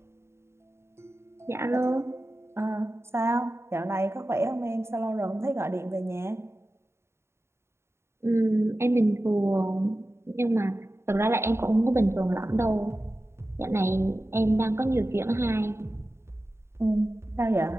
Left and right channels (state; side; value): late; left; 0.13 ms